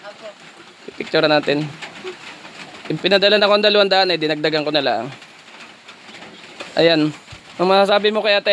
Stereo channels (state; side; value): identical; both; correlation 1.00